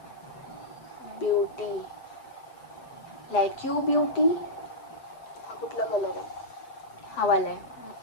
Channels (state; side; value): late; right; 7.9 ms